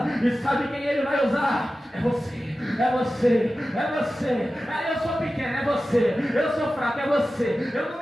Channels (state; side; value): normal; both; correlation 0.94